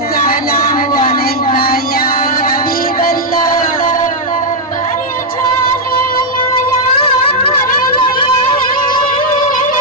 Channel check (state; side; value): normal; both; correlation -0.02